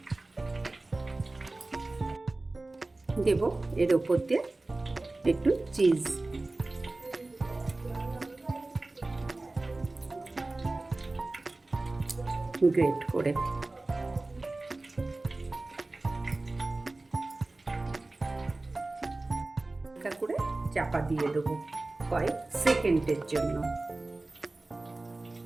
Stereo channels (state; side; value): quieter; left; 3.0 dB